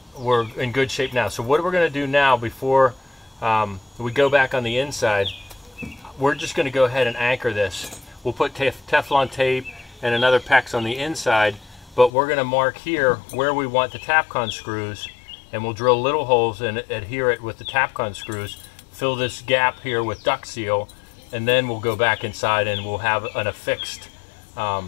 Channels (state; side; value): drops out; right; at 12.1 s